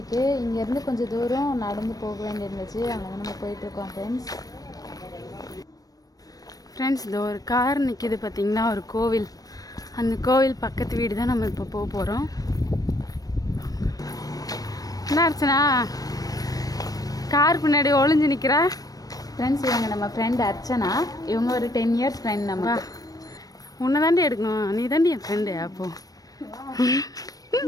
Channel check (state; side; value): late; right; 0.18 ms